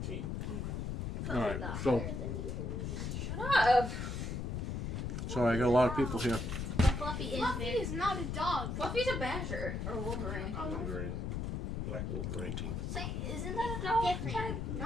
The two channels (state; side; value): noise; left; rumble, 3 dB below the sound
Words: All right. So, Shut up. sorry, I got a lot of people here. Fluffy is Fluffy big. is not a dog. Fluffy's a badger. Or Wolverine. Wolverine. Black Wolverine. 19. Say, isn't that a dog? Different.